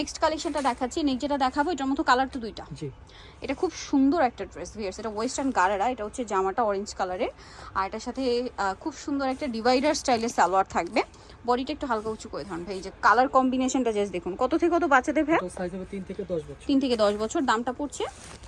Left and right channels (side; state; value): both; identical; correlation 1.00